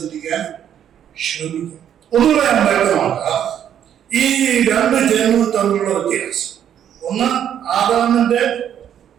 ചിന്തിക്കാൻ ശ്രമിക്കും. ഒന്നുകൂടെ ഞാൻ വ്യക്തമാക്കാം ഈ രണ്ട് ജന്മവും തമ്മിലുള്ള വ്യത്യാസം. ഒന്ന് ആദാമിൽ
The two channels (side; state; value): left; quieter; 9.7 dB